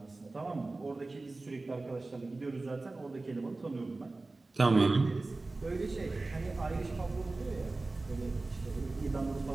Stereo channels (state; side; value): quieter; left; 3.3 dB